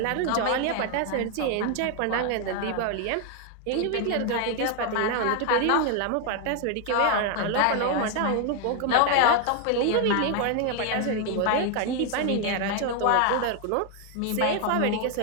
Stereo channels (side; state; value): both; different; correlation 0.01